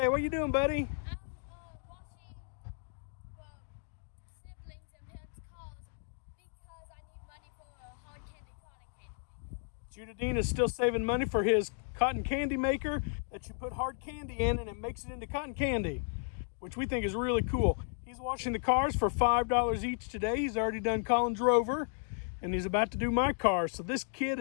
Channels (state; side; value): silent; right; 55 dB below the other